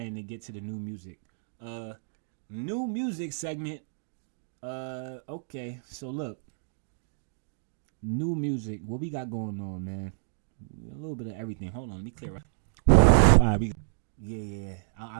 to get to the new music. New music segment. Okay, so look. New music. What we got going on, man? A little bit of everything. Hold on, let me clear up. All right, yeah.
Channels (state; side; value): silent; left; digital silence